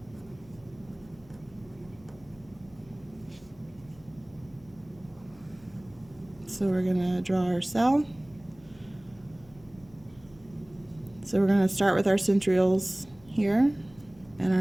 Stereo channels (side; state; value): left; noise; hum, 25 dB below the sound